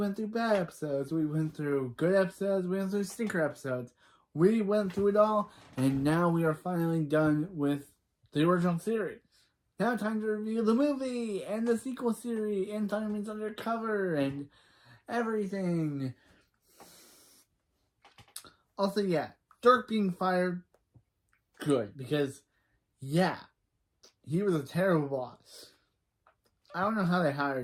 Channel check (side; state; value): both; identical; correlation 1.00